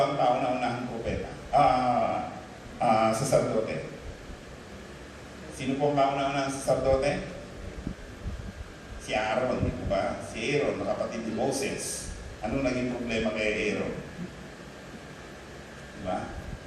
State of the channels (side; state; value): both; identical; correlation 1.00